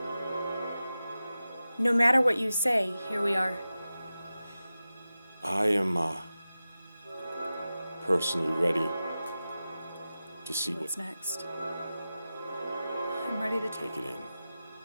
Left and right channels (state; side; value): inverted; both; correlation -0.94